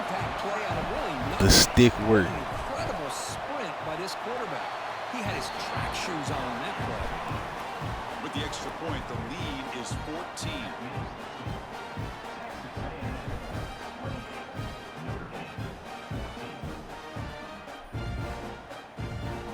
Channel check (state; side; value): identical; both; correlation 1.00